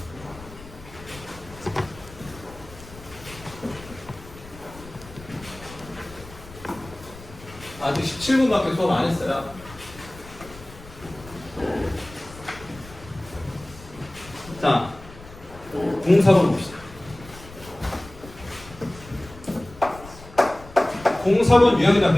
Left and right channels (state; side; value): noise; left; rumble, 18 dB below the sound